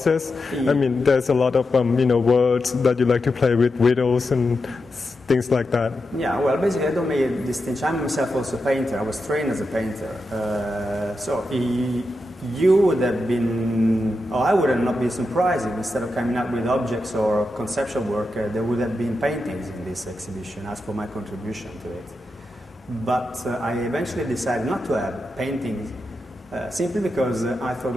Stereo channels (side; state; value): both; normal; correlation 0.88